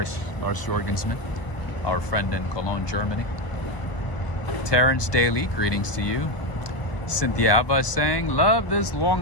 Jorgensen, our friend in Cologne, Germany. Terrence Daly, greetings to you. Cynthia Ava saying, love this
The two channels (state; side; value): late; right; 1.2 ms